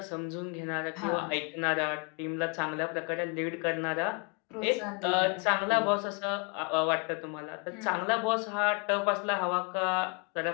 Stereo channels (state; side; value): quieter; right; 34.8 dB